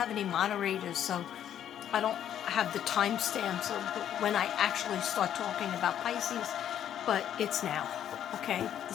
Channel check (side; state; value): right; quieter; 10.2 dB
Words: any moderators, so I don't have the timestamps of when I actually start talking about Pisces. But it's now. Okay? The